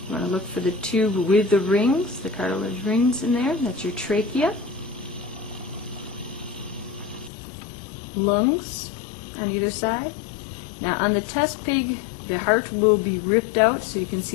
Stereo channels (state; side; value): drops out; right; at 7.3 s